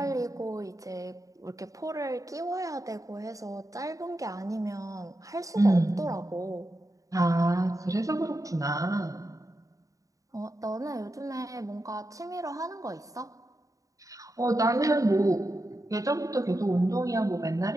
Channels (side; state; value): left; late; 0.16 ms